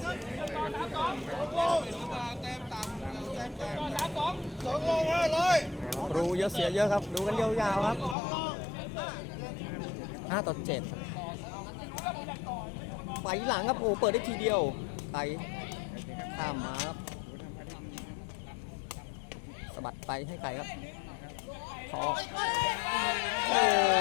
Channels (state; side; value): drops out; right; at 8.2 s